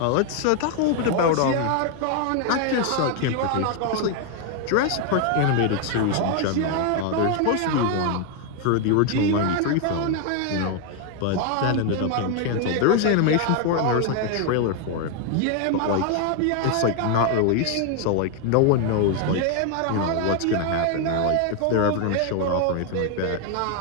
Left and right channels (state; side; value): different; both; correlation 0.01